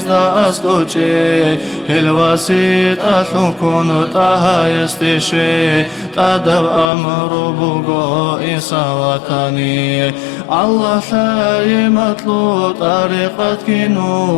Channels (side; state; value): right; drops out; at 6.9 s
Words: أسكوشي الوسيط أثنكون تاها يستشي تدب أمر بوغو إنسا وطني الله ثاي مطلوب طريقة